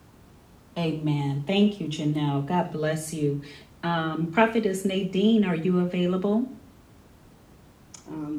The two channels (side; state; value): both; identical; correlation 1.00